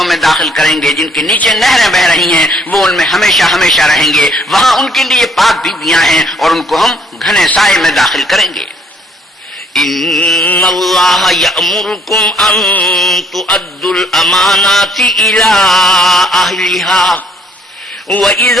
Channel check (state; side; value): normal; both; correlation 0.64